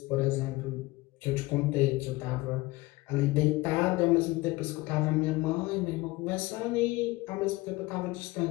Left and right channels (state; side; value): quieter; right; 21.0 dB